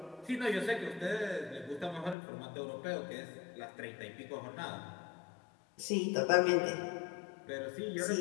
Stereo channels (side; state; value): right; drops out; at 2.1 s